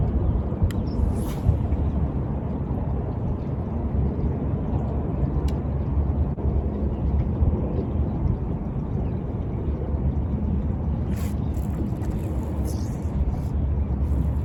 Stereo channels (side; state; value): both; identical; correlation 1.00